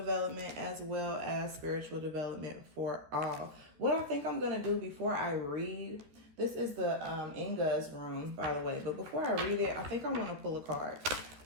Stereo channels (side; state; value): left; late; 13 ms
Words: as well as spiritual development for all. What I think I'm going to do before I read, this is the Inga's rune, by the way. But before I read it, I think I want to pull a card.